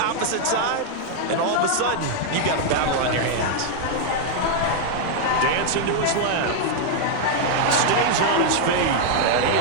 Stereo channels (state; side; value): different; both; correlation 0.00